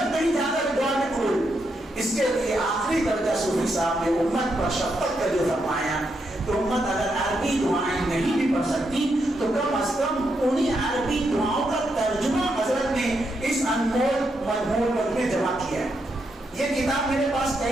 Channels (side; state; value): both; normal; correlation 0.81